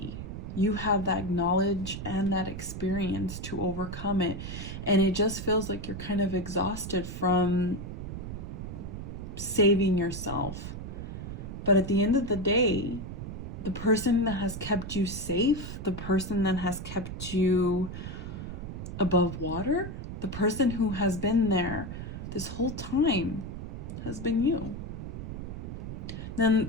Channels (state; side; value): noise; right; rumble, 7 dB below the sound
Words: You have that knowledge and that experience to overcome it. And it just feels like you're kind of exhausted from saving yourself. But at the end of the day, the person that has kept you safe, the person that has kept you above water, the person who has been there this whole time has been you. Then